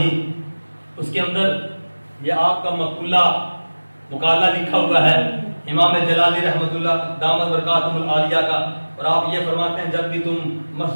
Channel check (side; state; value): both; inverted; correlation -1.00